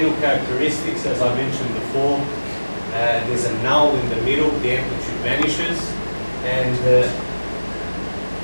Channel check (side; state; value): both; inverted; correlation -1.00